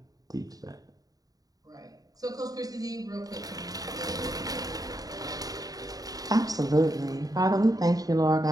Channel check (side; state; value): left; late; 0.18 ms